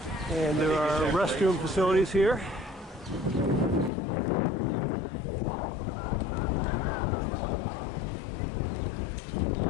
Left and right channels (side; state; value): right; drops out; at 3.9 s